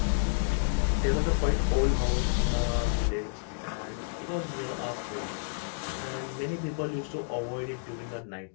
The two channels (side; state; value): right; silent; digital silence